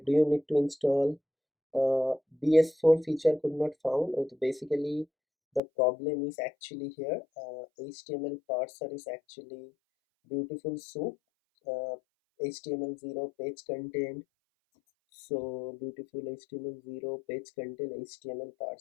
do you need to install BS4 feature could not found. Okay, basically the problem is actually here, HTML parser is actually beautiful soup, HTML0 page content. So beautiful HTML0 page content HTML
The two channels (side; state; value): right; drops out; at 5.6 s